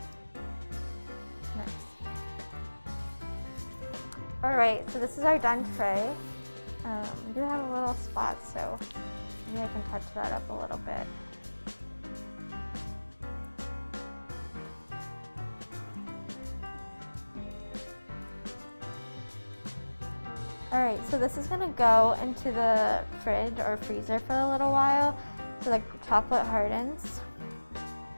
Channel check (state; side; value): inverted; both; correlation -1.00